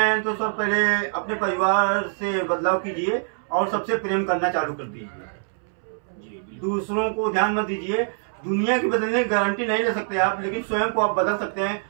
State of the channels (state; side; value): silent; left; 62 dB below the other